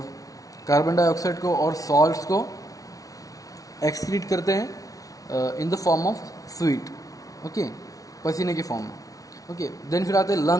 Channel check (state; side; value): late; right; 0.18 ms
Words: कार्बन डाइऑक्साइड को और सॉल्ट्स को एक्सक्रीट करते हैं इन the form of sweet, okay, पसीने के फॉर्म में, ओके. देन फिर आते हैं